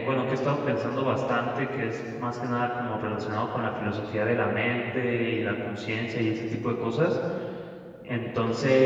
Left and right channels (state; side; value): identical; both; correlation 1.00